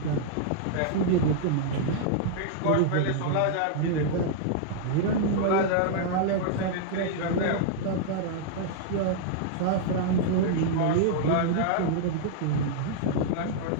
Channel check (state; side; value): different; both; correlation -0.01